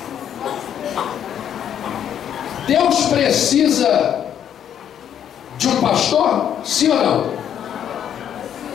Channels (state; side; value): quieter; right; 9.5 dB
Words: Deus precisa de um pastor? Sim ou não?